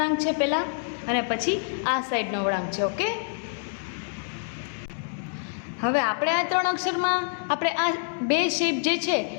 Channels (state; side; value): silent; right; digital silence